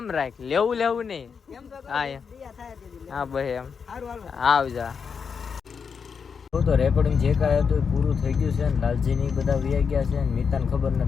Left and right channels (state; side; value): quieter; right; 6.1 dB